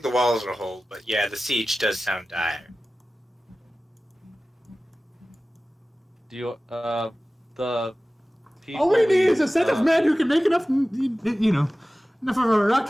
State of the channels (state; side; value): normal; both; correlation 0.96